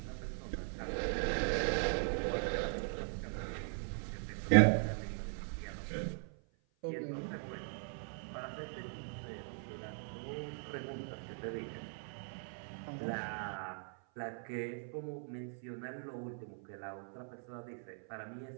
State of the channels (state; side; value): silent; left; 51 dB below the other